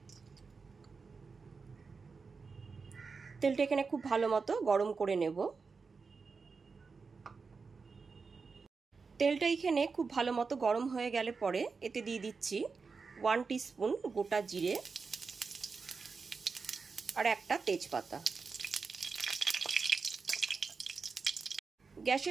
তেলটা এখানে খুব ভালো মতো গরম করে নেব। তেলটা এখানে খুব ভালো মতো গরম হয়ে গেলে পরে এতে দিয়ে দিচ্ছি 1 টিস্পুন গোটা জিরে আর একটা তেজপাতা।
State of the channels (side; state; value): left; quieter; 4.8 dB